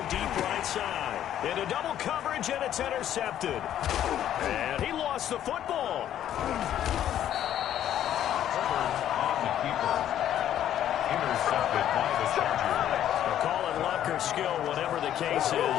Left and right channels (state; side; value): quieter; right; 11.1 dB